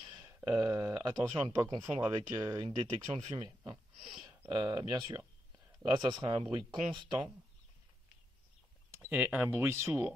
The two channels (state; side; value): normal; both; correlation 0.84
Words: Attention à ne pas confondre avec une détection de fumée, hein. Bien sûr. Là, ça sera un bruit constant et un bruit